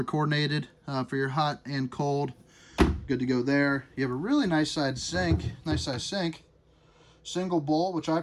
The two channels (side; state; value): both; identical; correlation 1.00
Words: coordinated for your hot and cold. Good to go there. You have a really nice size sink. Single bowl, which I